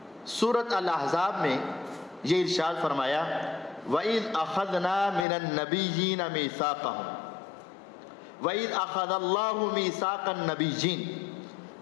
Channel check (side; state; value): right; drops out; at 5.2 s